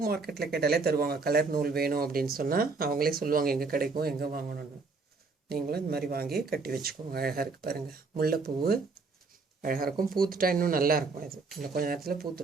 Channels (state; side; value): quieter; left; 4.1 dB